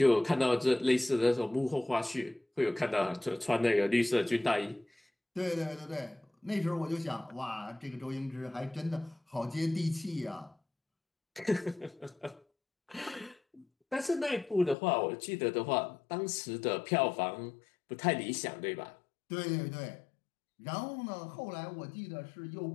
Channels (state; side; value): drops out; right; at 14.8 s